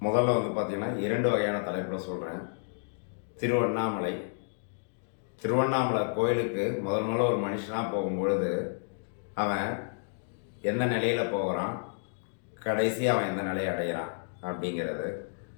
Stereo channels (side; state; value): right; silent; digital silence